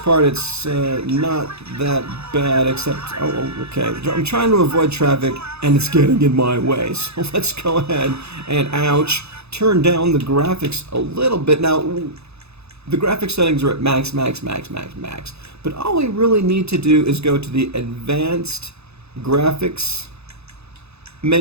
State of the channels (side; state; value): left; late; 0.79 ms